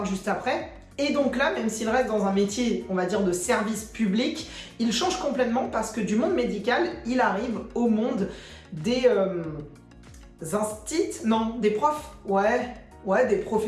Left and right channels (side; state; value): both; identical; correlation 1.00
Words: juste après. Et donc là, même s'il reste dans un métier, on va dire, de service public, il change complètement parce que du monde médical, il arrive au monde des des profs, des